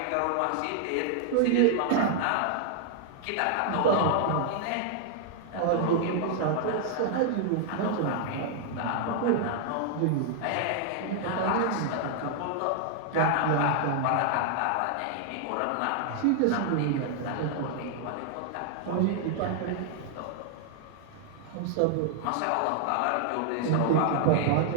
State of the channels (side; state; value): both; different; correlation 0.00